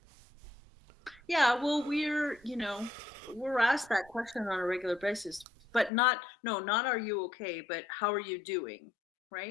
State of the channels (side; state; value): right; drops out; at 5.9 s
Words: yeah. Well, we're asked that question on a regular basis, but not are you okay, but how are you doing,